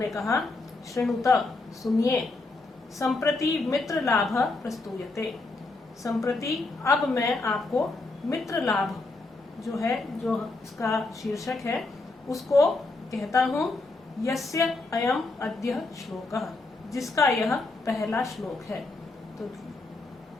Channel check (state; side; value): quieter; right; 3.3 dB